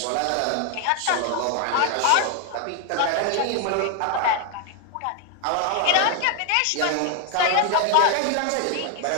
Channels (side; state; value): both; different; correlation 0.00